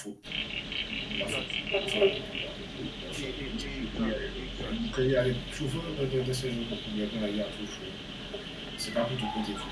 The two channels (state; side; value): identical; both; correlation 1.00